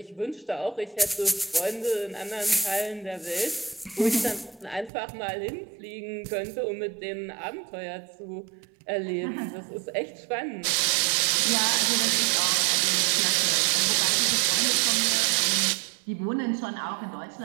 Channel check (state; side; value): drops out; left; at 4.9 s